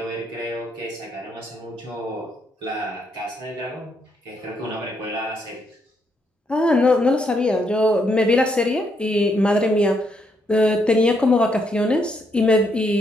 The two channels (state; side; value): normal; both; correlation 0.76